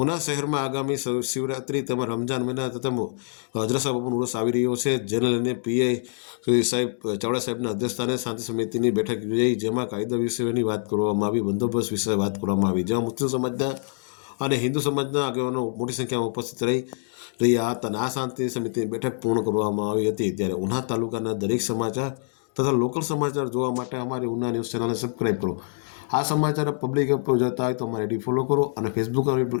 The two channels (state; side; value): silent; right; digital silence